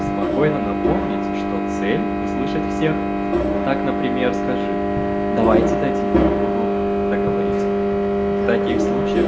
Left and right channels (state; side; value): identical; both; correlation 1.00